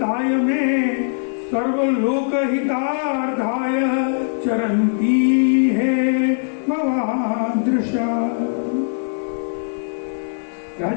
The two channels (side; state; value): right; silent; 65 dB below the other